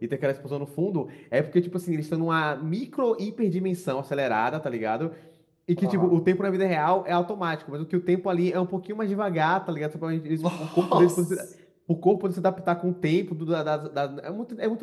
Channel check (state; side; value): identical; both; correlation 1.00